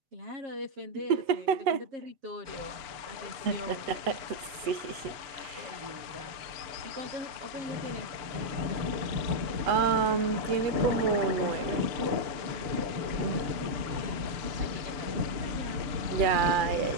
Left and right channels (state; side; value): late; left; 6.9 ms